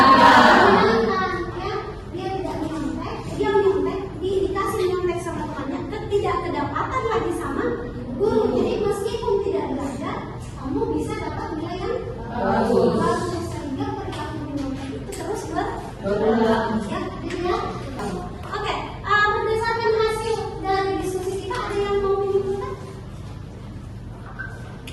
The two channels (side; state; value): both; identical; correlation 1.00